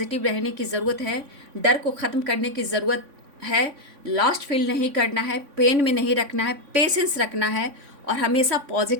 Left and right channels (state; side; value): late; left; 3.6 ms